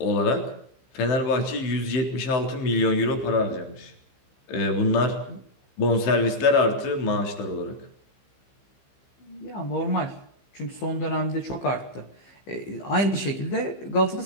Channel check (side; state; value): right; late; 15 ms